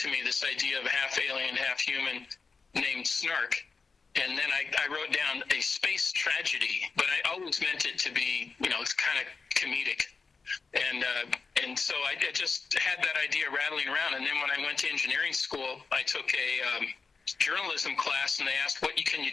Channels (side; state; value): right; quieter; 4.7 dB